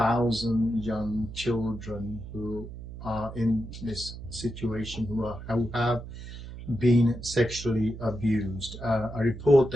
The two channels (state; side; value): noise; right; hum, 11 dB below the sound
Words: young children who are in this situation, who have been sexually abused. A report